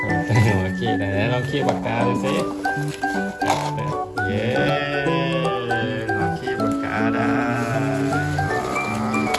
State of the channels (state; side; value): identical; both; correlation 1.00